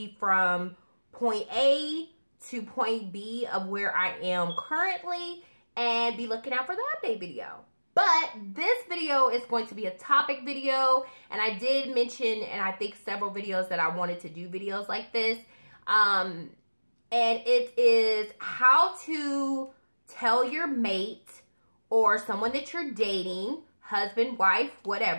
from point A to point B of where I am currently, and be looking out for the update video. But this video is going to be a topic video, and I did mention, and I think several videos, that I wanted to do videos like this. And it is how to tell your mate or someone that you're dating, husband, wife,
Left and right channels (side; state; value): both; inverted; correlation -1.00